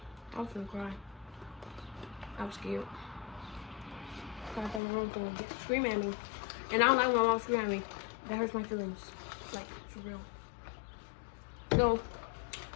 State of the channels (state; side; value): drops out; right; at 4.8 s